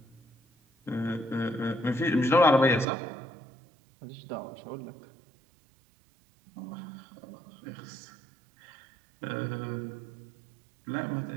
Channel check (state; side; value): drops out; left; at 2.9 s